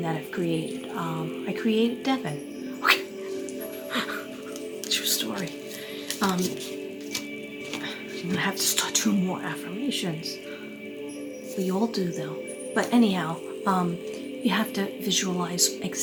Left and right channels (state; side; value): identical; both; correlation 1.00